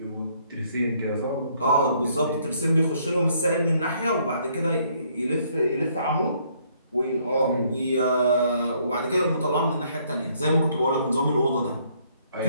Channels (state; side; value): inverted; both; correlation -0.67